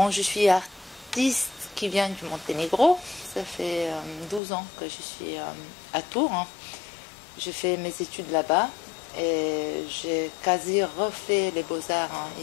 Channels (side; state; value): right; drops out; at 4.4 s